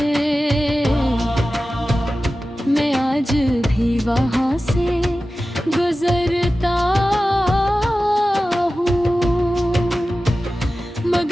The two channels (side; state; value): both; normal; correlation 0.95